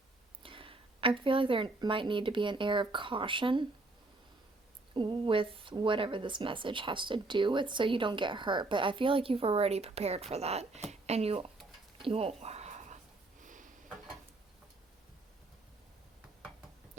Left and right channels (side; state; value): left; quieter; 3.1 dB